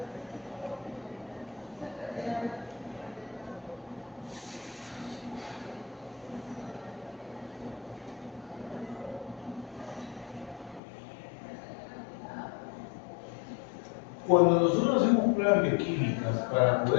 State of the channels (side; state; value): right; drops out; at 10.8 s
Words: Cuando nosotros hacemos pruebas bioquímicas para